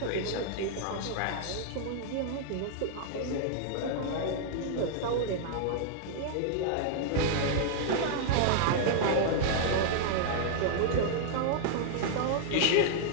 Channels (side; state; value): both; different; correlation -0.01